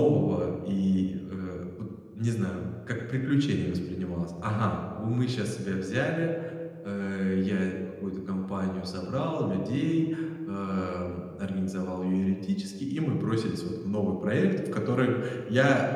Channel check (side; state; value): both; identical; correlation 1.00